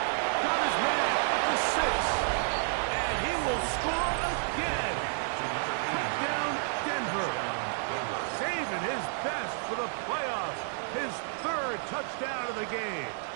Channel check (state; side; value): silent; left; digital silence